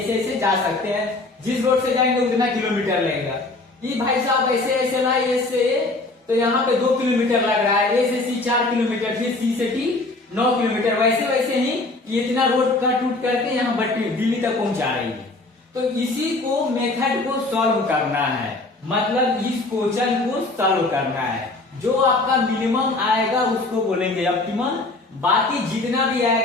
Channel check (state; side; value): quieter; right; 3.1 dB